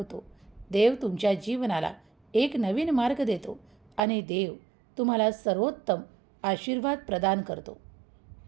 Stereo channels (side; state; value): left; drops out; at 4.0 s